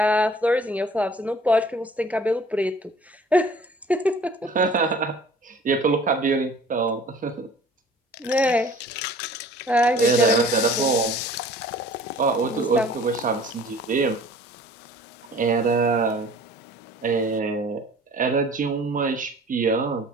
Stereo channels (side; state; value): both; normal; correlation 0.49